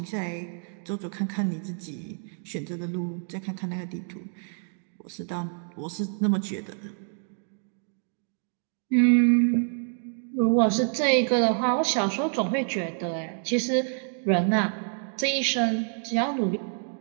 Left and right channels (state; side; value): silent; left; 60 dB below the other